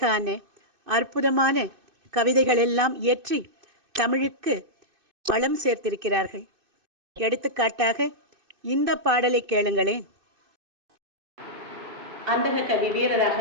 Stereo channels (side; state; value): left; late; 2.6 ms